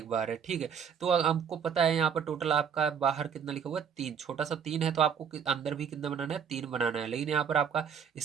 बार है। ठीक है, तो हमको पता है यहाँ पर टोटल आपका बाहर कितना लिखा हुआ है 3, छोटा सा 3 है, तो आपको अंदर भी कितना बनाना है 3 बनाना है। लेकिन यहाँ पर आपका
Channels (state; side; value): quieter; left; 7.4 dB